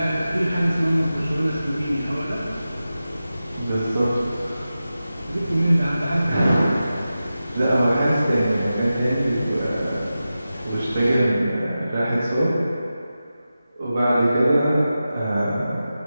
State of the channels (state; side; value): inverted; both; correlation -0.93